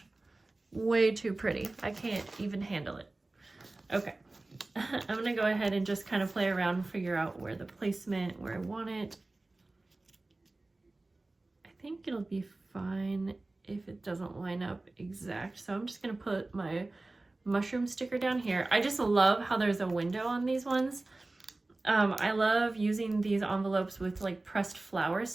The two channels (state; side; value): quieter; left; 3.0 dB